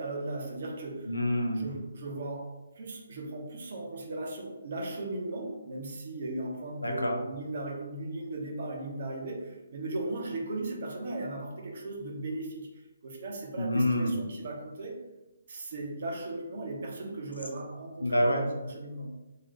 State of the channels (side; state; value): both; inverted; correlation -0.80